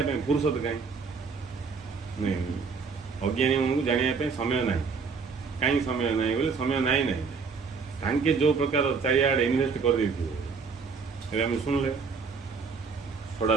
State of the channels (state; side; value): quieter; left; 5.1 dB